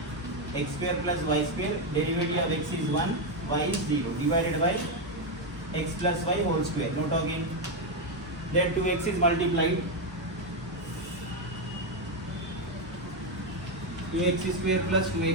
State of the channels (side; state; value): both; normal; correlation 0.05